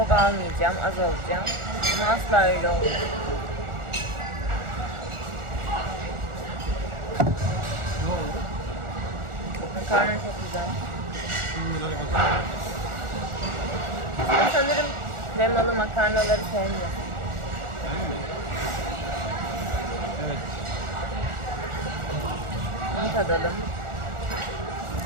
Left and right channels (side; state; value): left; late; 1.4 ms